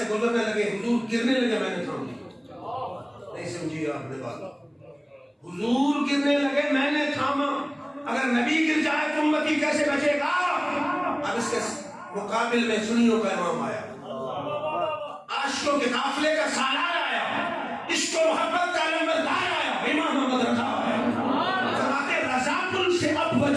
گزرنے لگے، حضور گرنے لگے، میں نے تھام لی۔ نہیں سمجھی آپ نے بات، حضور گرنے لگے میں نے تھاما، اگر نبی گر جائے تو امتی کیسے بچے گا؟ اب اس کے مقابل میں سنیوں کا امام آیا، عاشقوں کے قافلے کا سالار آیا، عشق و محبت کا علمبردار آیا، امام محمد رضا آیا۔ فرماتے رضا پل سے اب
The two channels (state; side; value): identical; both; correlation 1.00